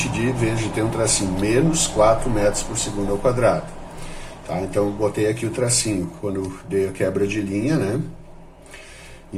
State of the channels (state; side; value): identical; both; correlation 1.00